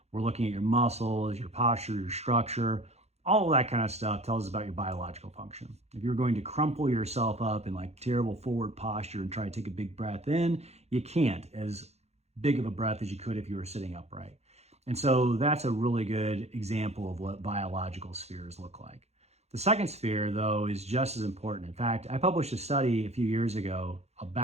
We're looking at your muscles, your posture, your structure. All of that kind of stuff tells us about your biological function. If you're going to crumple yourself up in like terrible forward posture and try to take a big breath in, you can't as big of a breath as you could if you were sitting upright. And so that's a really good example of what biological spheres look like. The second sphere, though, is just as important. In fact, I published a study a few years ago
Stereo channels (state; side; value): late; left; 0.31 ms